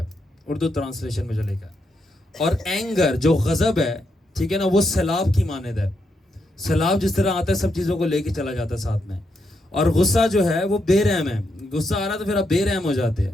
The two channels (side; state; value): both; normal; correlation 0.81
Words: उर्दू ट्रांसलेशन में जो लिखा है. और एंगर जो गजब है, ठीक है ना, वो सैलाब की मानद है. सैलाब जिस तरह आता है सब चीज़ों को लेके चला जाता है साथ में, और गुस्सा जो है वो बेरहम है. गुस्सा आ रहा तो फिर आप बेरहम हो जाते